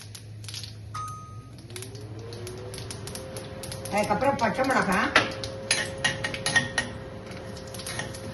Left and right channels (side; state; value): both; identical; correlation 1.00